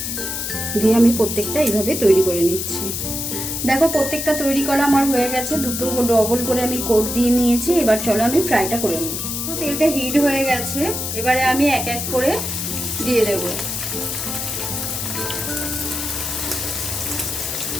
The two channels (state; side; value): noise; left; hiss, 3 dB below the sound